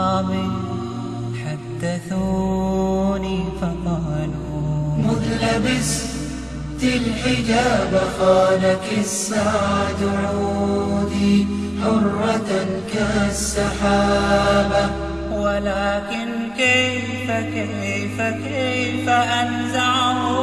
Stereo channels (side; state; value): right; noise; rumble, 25 dB below the sound